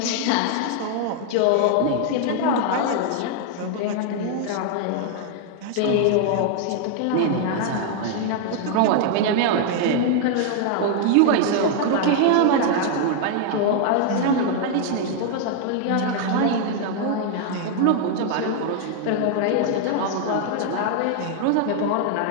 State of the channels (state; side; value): different; both; correlation 0.00